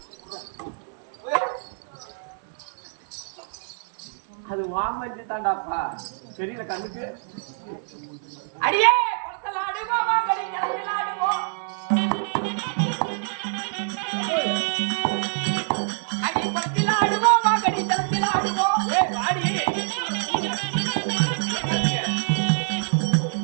அது வாமஞ்சி தாண்டாப்பா தெரியல கண்ணுக்கு. அடியே படத்தலாடுவா வாங்கடி கடத்தலாடுவோம். அடி படத்தலாடுவா வாங்கடி கடத்தலாடுவோம். ஏய் வாடி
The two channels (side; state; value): left; silent; 59 dB below the other